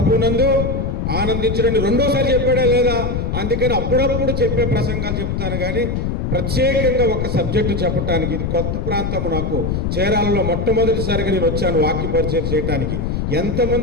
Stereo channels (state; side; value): noise; left; rumble, 1 dB below the sound